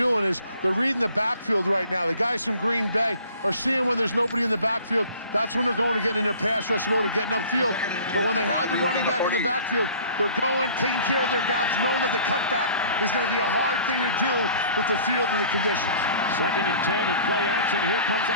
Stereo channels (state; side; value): inverted; both; correlation -0.49